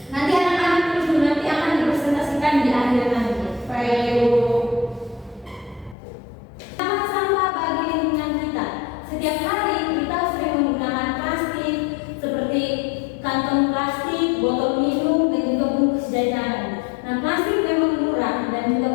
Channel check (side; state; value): right; drops out; at 6.0 s